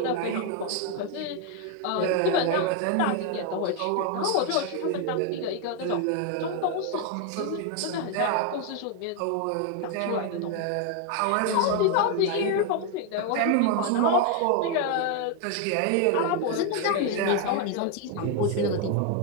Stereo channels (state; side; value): different; both; correlation 0.01